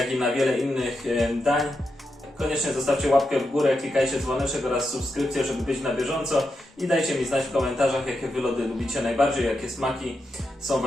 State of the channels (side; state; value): both; normal; correlation 0.86